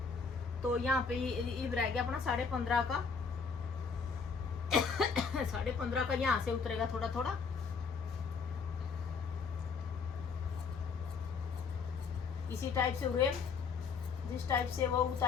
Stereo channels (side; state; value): right; quieter; 5.4 dB